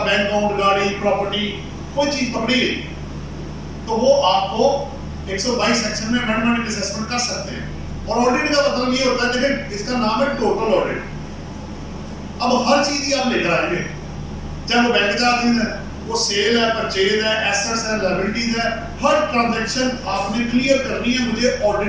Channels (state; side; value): identical; both; correlation 1.00